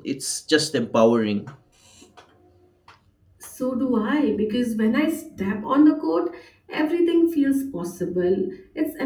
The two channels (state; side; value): identical; both; correlation 1.00